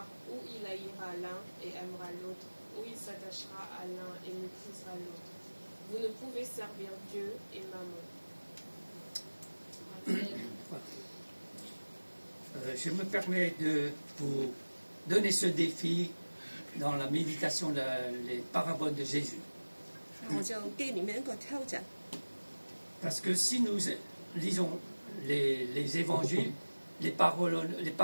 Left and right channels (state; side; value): inverted; both; correlation -1.00